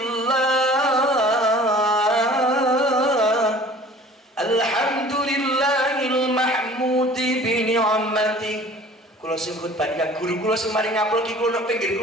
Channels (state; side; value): normal; both; correlation 0.47